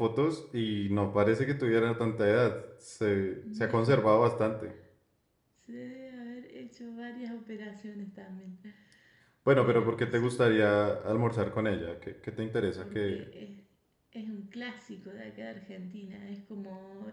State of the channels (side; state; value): both; identical; correlation 1.00